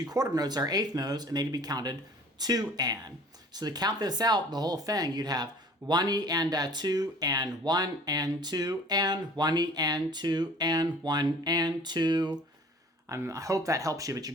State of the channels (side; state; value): both; normal; correlation 0.48